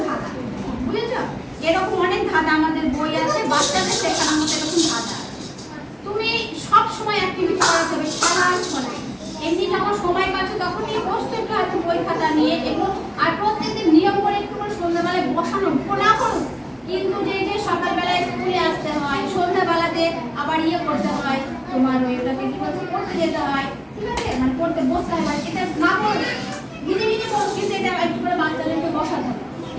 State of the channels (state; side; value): identical; both; correlation 1.00